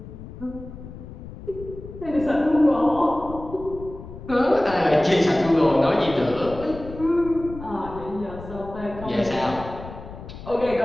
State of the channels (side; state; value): left; noise; rumble, 13 dB below the sound